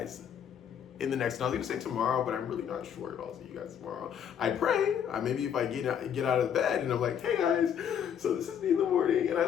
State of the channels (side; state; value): right; quieter; 8.6 dB